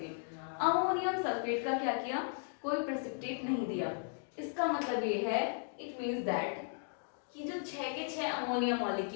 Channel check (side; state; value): right; silent; 54 dB below the other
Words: Ammonium sulphate का क्या किया, कोई प्रेसिपिटेट नहीं दिया। इसका मतलब ये है, इट मींस दैट कि जो 6 के 6 अमोनिया